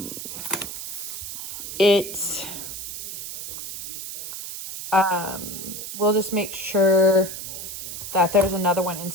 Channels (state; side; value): noise; right; hiss, 8 dB below the sound